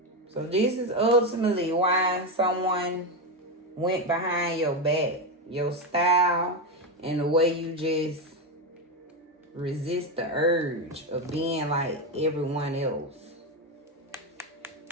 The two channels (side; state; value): both; normal; correlation 0.11